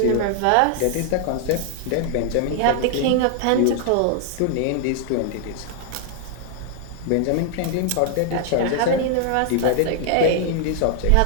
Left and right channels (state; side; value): different; both; correlation 0.00